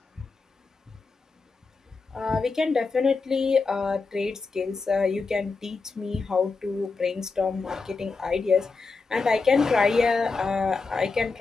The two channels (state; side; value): quieter; right; 4.3 dB